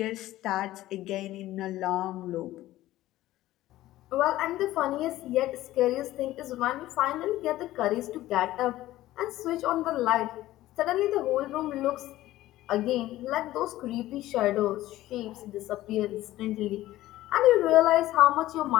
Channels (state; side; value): quieter; right; 15.5 dB